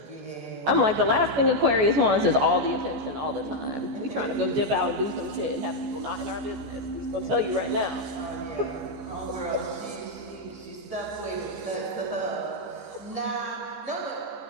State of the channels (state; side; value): late; left; 14 ms